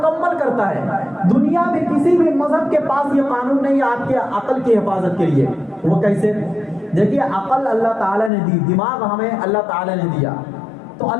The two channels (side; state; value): right; drops out; at 8.3 s